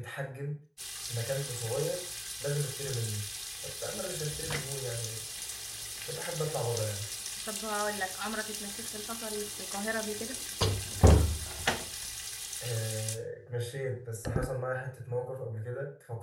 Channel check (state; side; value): identical; both; correlation 1.00